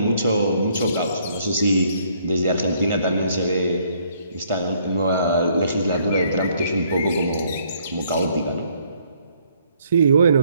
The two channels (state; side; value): inverted; both; correlation -0.66